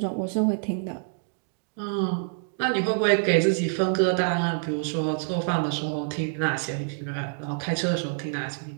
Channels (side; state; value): left; silent; digital silence